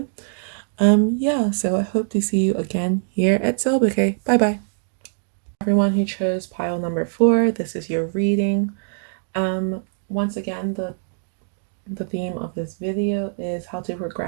Yeah, so I hope to see you again here at Soul Bouquet. Bye bye. Everyone who chose pile number 4, this is your reading. Once again, the theme of this video is how to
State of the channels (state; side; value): silent; left; digital silence